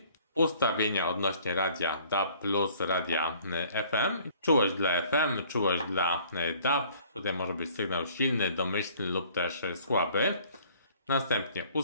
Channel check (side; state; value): both; inverted; correlation -0.55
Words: Ustawienia odnośnie radia DAB plus radia FM. Czułość dla FM, czułość dla DAB. Tutaj może być sygnał silny, domyślny lub też słaby. Następnie